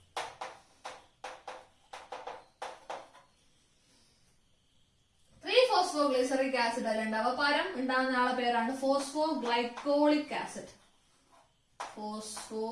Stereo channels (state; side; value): identical; both; correlation 1.00